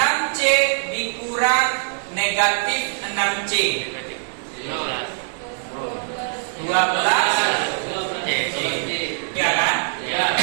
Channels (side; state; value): left; silent; digital silence